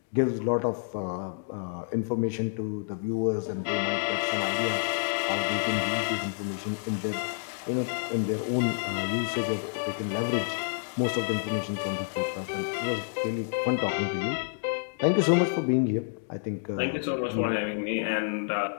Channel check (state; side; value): silent; right; digital silence